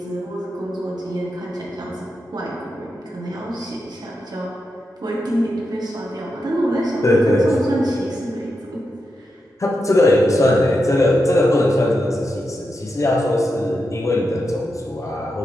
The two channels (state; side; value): normal; both; correlation 0.87